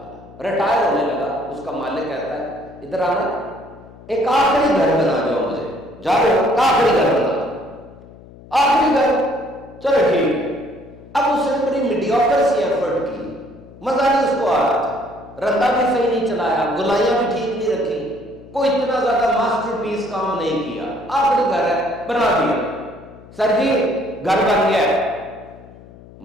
ریٹائر ہونے لگا، اس کا مالک کہتا ہے ادھر آنا، ایک آخری گھر بنا دو مجھے، جا رہے ہو آخری گھر بنا دو، آخری گھر، چلو ٹھیک ہے۔ اب اس نے بڑی میڈیوکر سی ایفرٹ کی، مزہ نہیں اس کو آ رہا تھا، رندا بھی صحیح نہیں چلایا، گلائیاں بھی ٹھیک نہیں رکھی، کوئی اتنا زیادہ ماسٹر پیس کام نہیں کیا، آخری گھر ہے بنا دیا، سر جی گھر بن گیا ہے۔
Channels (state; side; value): noise; left; hum, 20 dB below the sound